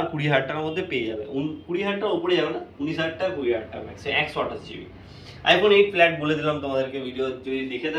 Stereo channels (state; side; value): identical; both; correlation 1.00